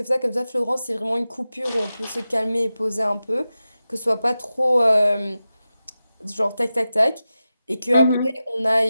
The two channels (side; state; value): both; inverted; correlation -0.93